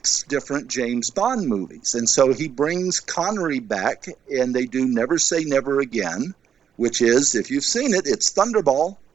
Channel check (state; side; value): quieter; left; 8.2 dB